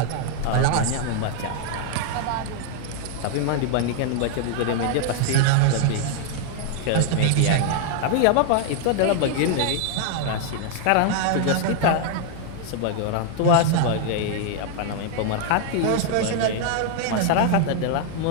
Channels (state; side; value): different; both; correlation 0.00